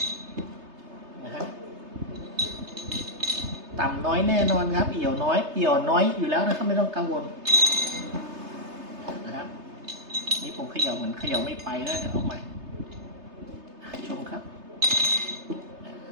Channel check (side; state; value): left; late; 3.3 ms